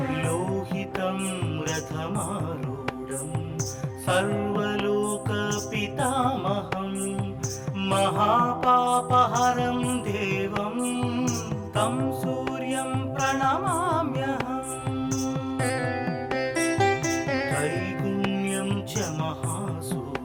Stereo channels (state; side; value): identical; both; correlation 1.00